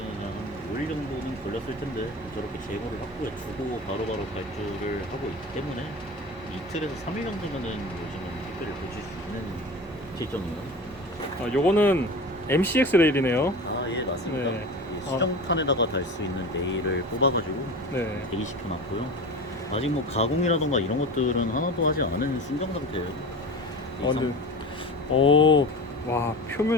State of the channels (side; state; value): both; normal; correlation 0.32